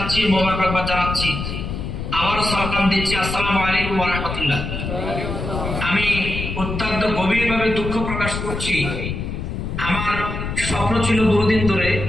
মোবারকবাদ জানাচ্ছি, আবারও সালাম দিচ্ছি। আসসালামু আলাইকুম ওয়া রাহমাতুল্লাহ। আমি অত্যন্ত গভীরভাবে দুঃখ প্রকাশ করছি। আমার স্বপ্ন ছিল বহুদিন ধরে,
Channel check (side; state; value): left; noise; rumble, 5 dB below the sound